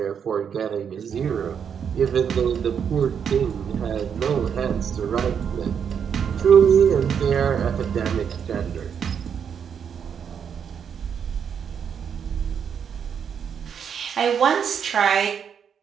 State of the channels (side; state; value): left; quieter; 7.5 dB